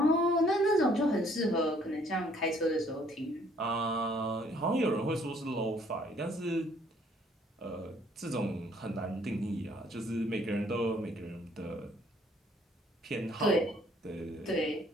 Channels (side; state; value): both; normal; correlation 0.62